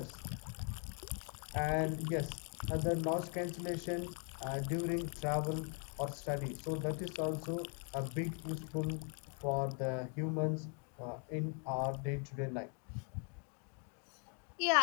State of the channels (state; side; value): quieter; right; 40.0 dB